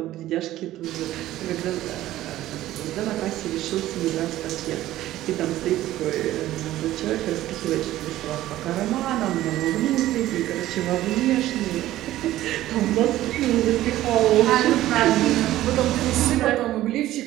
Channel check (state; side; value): quieter; left; 14.6 dB